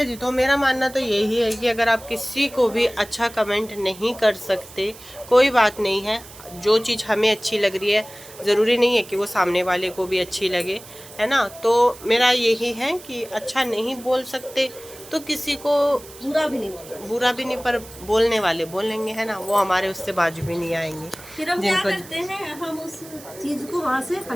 जी। तो मेरा मानना तो यही है कि अगर आप किसी को भी अच्छा कमेंट नहीं कर सकते, कोई बात नहीं है। जो चीज़ हमें अच्छी लग रही है ज़रूरी नहीं है कि वो सामने वाले को भी अच्छी लगे, है ना। तो मेरा यही है कि अच्छा नहीं बोल सकते तो किसी को बुरा भी नहीं पर बोलने वाले बोलेंगे, है ना। वो हमारे उससे बाजू भी नहीं आएंगे। फिर हम क्या करते हैं, हम उस चीज को वहाँ से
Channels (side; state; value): right; noise; hiss, 18 dB below the sound